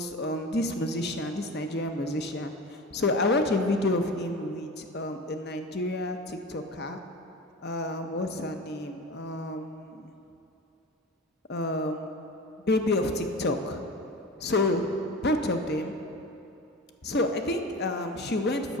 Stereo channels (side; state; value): both; normal; correlation 0.32